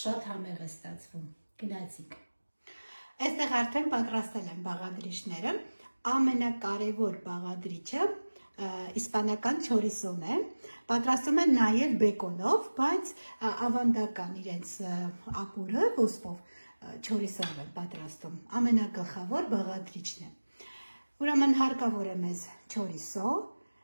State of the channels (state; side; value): inverted; both; correlation -1.00